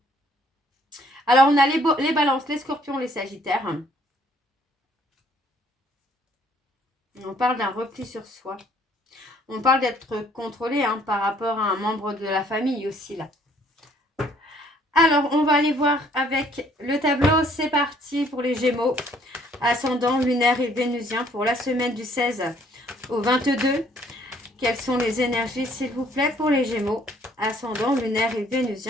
Alors, on a les balances, les scorpions, les sagittaires. On parle d'un repli sur soi. On parle d'être contrôlé hein, par rapport à un membre de la famille aussi, là. Alors, on va aller voir avec le tableau. C'est parti pour les Gémeaux. Ascendant, lunaire et vénusien pour la semaine du 16 au 22. Quelles sont les énergies, s'il vous plaît, pour les Gémeaux? Ascendant, lunaire et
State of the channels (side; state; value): both; normal; correlation 0.62